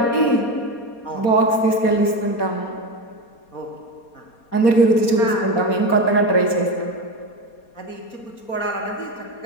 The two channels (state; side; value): late; right; 4.2 ms